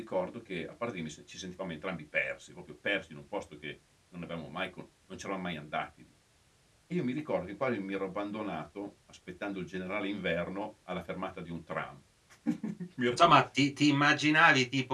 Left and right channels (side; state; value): both; identical; correlation 1.00